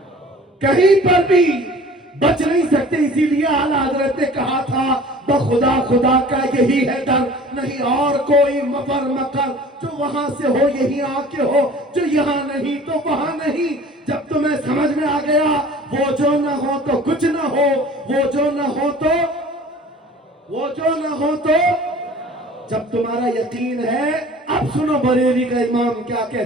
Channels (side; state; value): both; normal; correlation 0.46